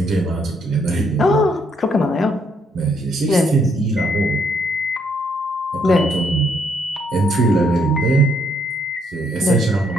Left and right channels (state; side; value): normal; both; correlation 0.71